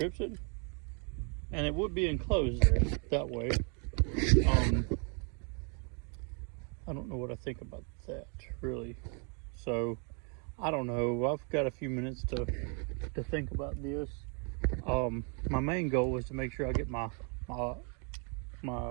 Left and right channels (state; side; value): quieter; left; 38.0 dB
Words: it, and it would be enclosed there that way. I don't know what I think about that really. So I don't know. I've got a few minutes to think about this. My main goal is to make sure I get my